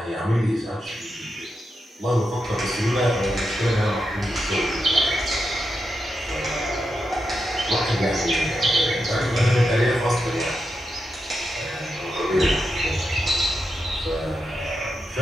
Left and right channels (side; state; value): both; normal; correlation 0.87